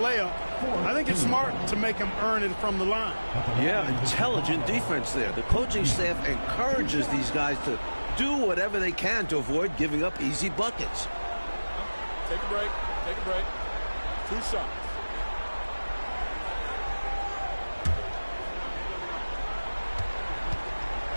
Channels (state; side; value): inverted; both; correlation -1.00